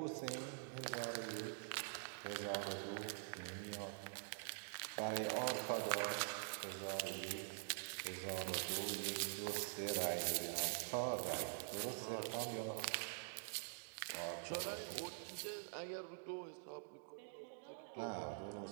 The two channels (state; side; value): silent; left; digital silence